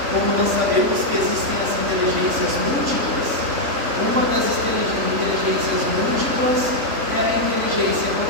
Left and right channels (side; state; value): left; late; 3.5 ms